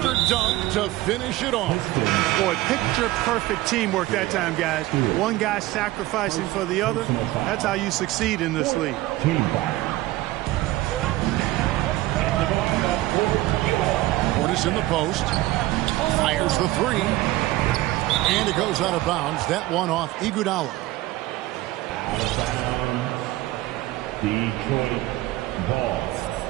dunk to finish it off. Boy, picture-perfect teamwork that time, guys. One guy sacrificing for the other. That's how you succeed in this league. Portis in the post. Fires the 3. And it goes out of bounds. That one off Iguodala. Out of bounds. Detroit ball.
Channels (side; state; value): left; quieter; 17.4 dB